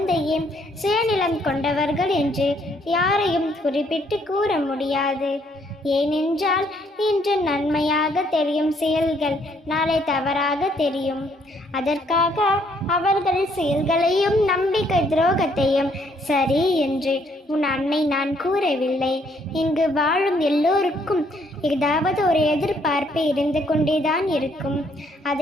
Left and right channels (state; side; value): normal; both; correlation 0.68